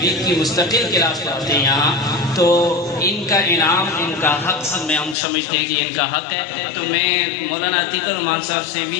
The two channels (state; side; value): drops out; right; at 5.2 s